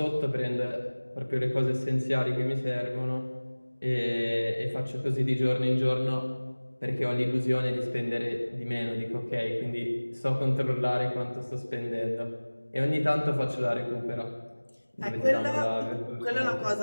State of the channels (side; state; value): both; inverted; correlation -1.00